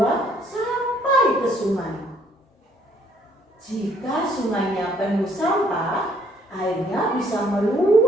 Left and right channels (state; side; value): normal; both; correlation 0.64